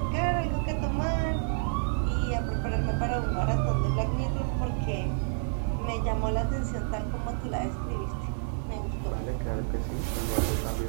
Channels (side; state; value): left; silent; digital silence